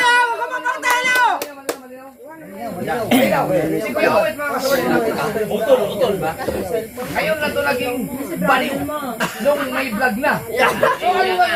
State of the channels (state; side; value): identical; both; correlation 1.00